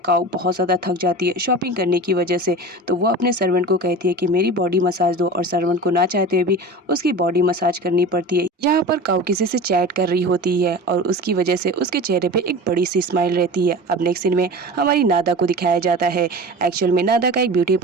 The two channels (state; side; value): normal; both; correlation 0.33